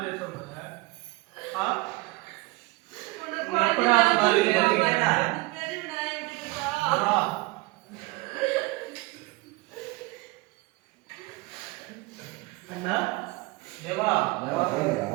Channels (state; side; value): quieter; left; 23.6 dB